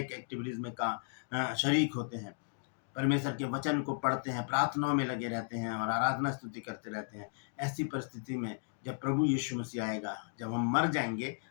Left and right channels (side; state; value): right; silent; digital silence